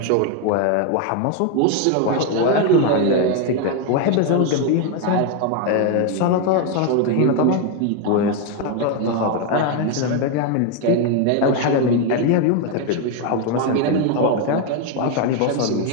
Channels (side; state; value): both; different; correlation 0.01